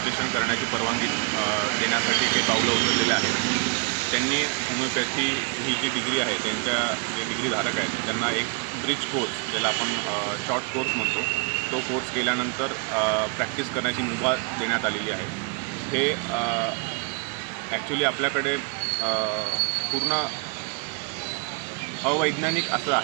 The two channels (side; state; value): left; quieter; 35.2 dB